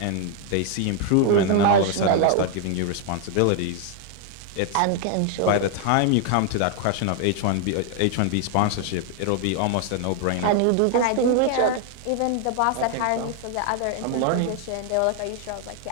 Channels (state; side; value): different; both; correlation 0.00